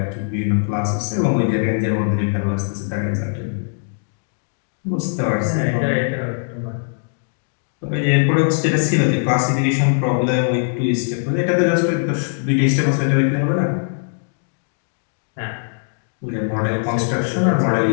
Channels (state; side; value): silent; right; digital silence